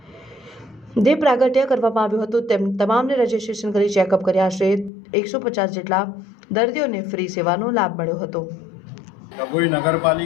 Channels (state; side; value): drops out; right; at 4.9 s